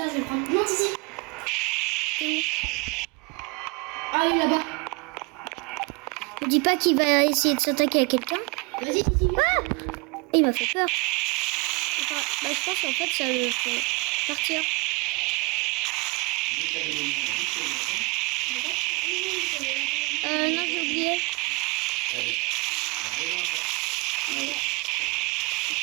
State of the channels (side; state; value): left; quieter; 29.0 dB